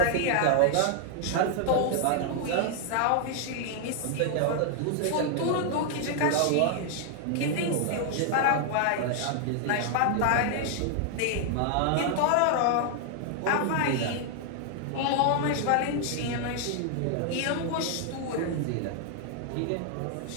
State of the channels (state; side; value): different; both; correlation 0.00